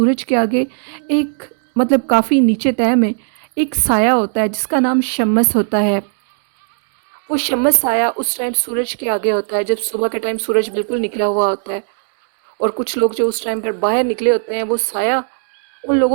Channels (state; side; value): silent; left; digital silence